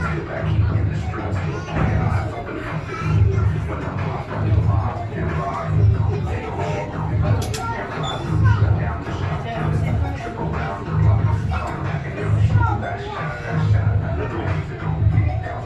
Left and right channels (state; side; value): identical; both; correlation 1.00